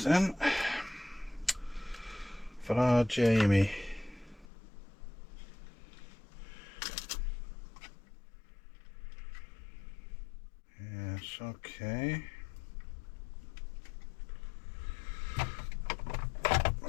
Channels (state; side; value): drops out; right; at 4.5 s